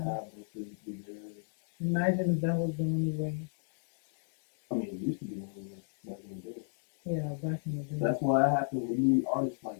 them physically there. Imagine if that was the only way. I mean, it used to be the only way back in the day. Yeah, back in the day. That's why it happens when you need artists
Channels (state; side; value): silent; right; digital silence